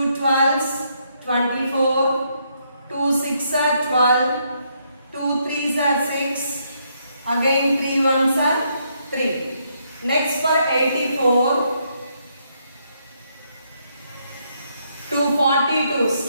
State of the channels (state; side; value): inverted; both; correlation -0.75